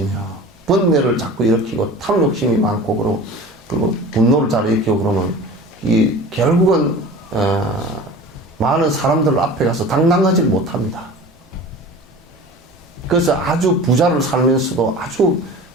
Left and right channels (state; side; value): normal; both; correlation 0.38